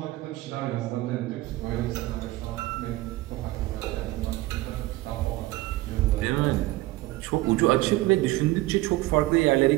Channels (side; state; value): left; quieter; 18.4 dB